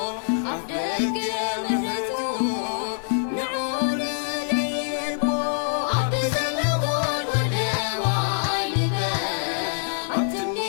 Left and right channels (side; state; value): right; silent; 62 dB below the other